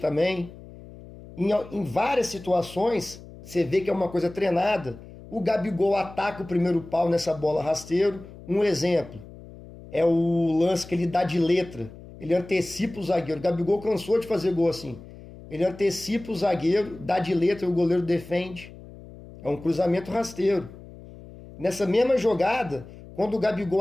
Em várias situações, você vê que é uma coisa treinada. O Gabigol ataca o primeiro pau nessa bola rasteiro. Um exemplo é o lance que ele dá de letra. Ele antecipa o zagueiro. O Gabigol cansou de fazer gol assim. Ele antecipa o zagueiro, dá de letra e o goleiro defende. É um cruzamento rasteiro. Nessa mesma jogada, quando o Gabigol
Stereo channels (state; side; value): noise; left; hum, 17 dB below the sound